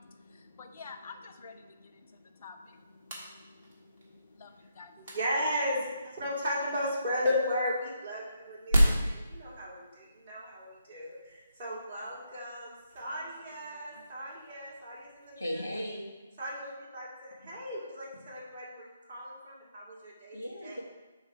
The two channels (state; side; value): inverted; both; correlation -0.79